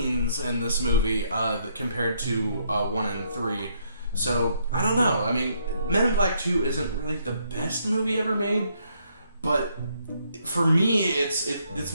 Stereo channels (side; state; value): both; inverted; correlation -0.72